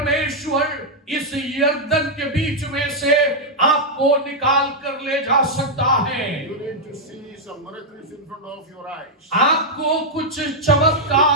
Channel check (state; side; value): normal; both; correlation -0.03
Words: इस यर्दन के बीच में से आपको निकाल कर ले जा सकता है। You need to see some miracles in front of your eyes. आपको कुछ